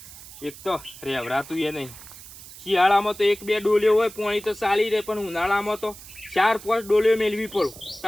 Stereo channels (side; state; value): right; noise; hiss, 16 dB below the sound